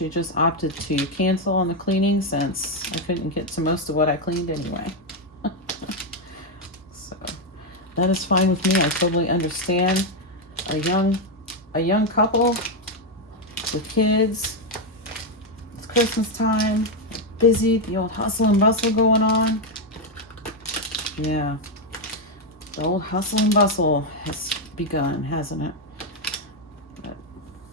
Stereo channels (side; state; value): both; normal; correlation 0.04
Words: just opted to cancel on the cleaning since I couldn't get to most of what I cleaned anyway. So that is fine with me. I totally understand. A young couple with kids, it's Christmas time, busy, the old hustle and bustle going on. Yeah, the old hustle and bustle has begun, hasn't it? But